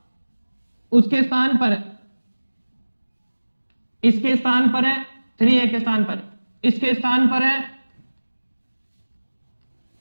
उसके स्थान पर इसके स्थान पर है 3A के स्थान पर, इसके स्थान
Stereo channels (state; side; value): inverted; both; correlation -1.00